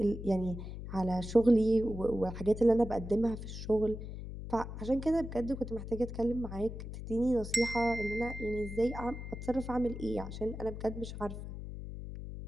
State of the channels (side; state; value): left; noise; hum, 9 dB below the sound